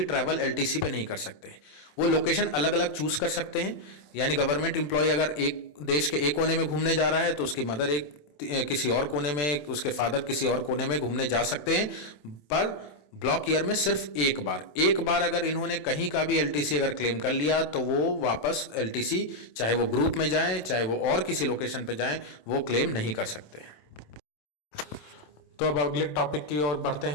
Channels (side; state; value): right; late; 27 ms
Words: ट्रैवल एलटीसी पे नहीं कर सकते। वो लोकेशन अलग अलग चूज कर सकते हैं। यानी गवर्नमेंट एम्प्लॉय अगर एक देश के एक कोने में घूमने जा रहा है तो उसकी मदर किसी और कोने में, उसके फादर किसी और कोने में घूमने जा सकते हैं, पर ब्लॉक ईयर में सिर्फ एक बार अगर इन्होंने कहीं का भी एलटीसी अगर क्लेम कर लिया तो वो वापस एलटीसी, चाहे वो ग्रुप में जाएं चाहे वो और किसी लोकेशन पे जाएं, वो क्लेम नहीं कर सकते। तो अब अगले टॉपिक की ओर बढ़ते